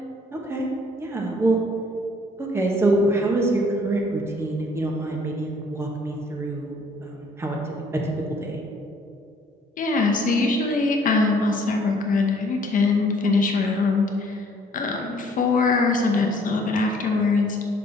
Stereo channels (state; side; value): normal; both; correlation 0.60